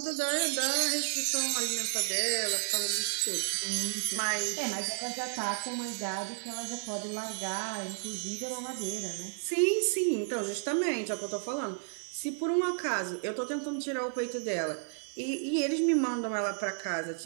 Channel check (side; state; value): left; silent; digital silence